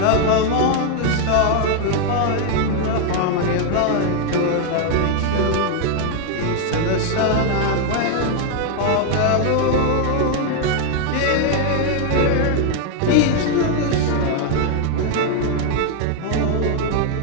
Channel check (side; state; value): both; different; correlation 0.01